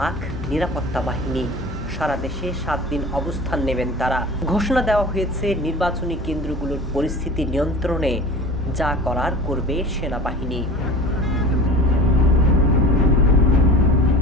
নিরাপত্তা বাহিনী। সারা দেশে ৭ দিন অবস্থান নেবেন তারা। ঘোষণা দেওয়া হয়েছে নির্বাচনী কেন্দ্রগুলোর পরিস্থিতি নিয়ন্ত্রণে যা করার করবে সেনাবাহিনী।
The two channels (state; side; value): normal; both; correlation 0.38